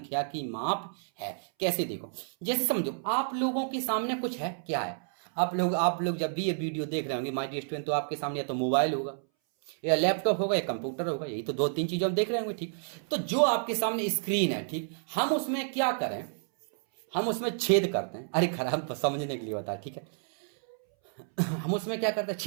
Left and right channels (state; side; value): silent; left; 58 dB below the other